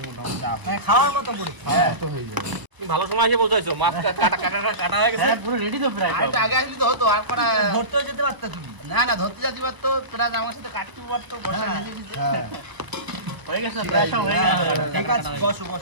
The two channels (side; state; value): left; late; 1.0 ms